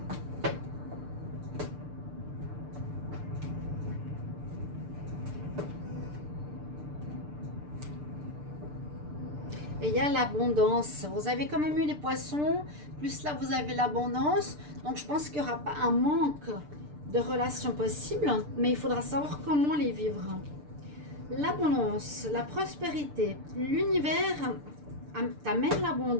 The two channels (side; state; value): left; late; 6.7 ms